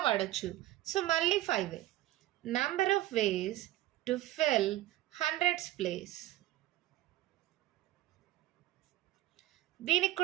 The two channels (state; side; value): quieter; left; 15.1 dB